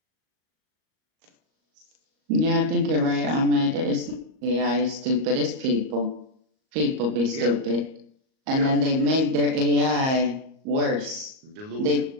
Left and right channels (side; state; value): left; late; 38 ms